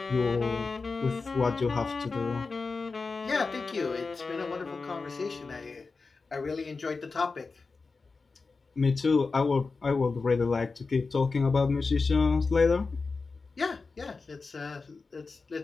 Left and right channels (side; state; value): right; quieter; 4.2 dB